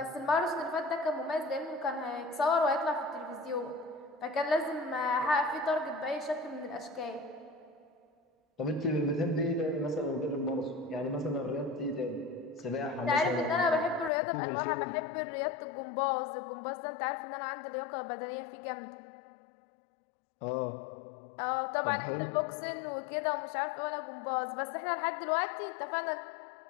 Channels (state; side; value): drops out; right; at 14.1 s